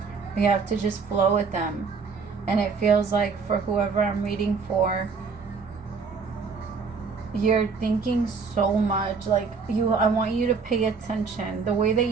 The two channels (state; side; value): quieter; left; 5.1 dB